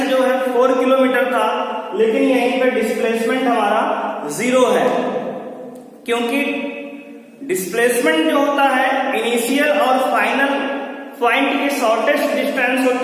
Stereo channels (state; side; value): identical; both; correlation 1.00